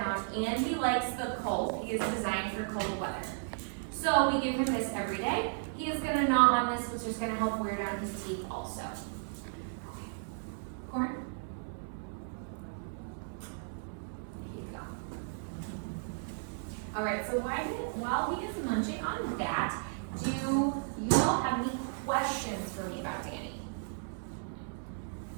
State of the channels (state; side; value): silent; left; 55 dB below the other